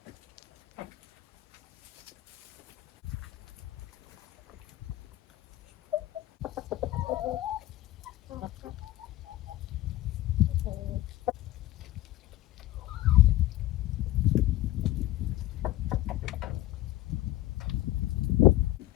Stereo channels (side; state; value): right; quieter; 15.3 dB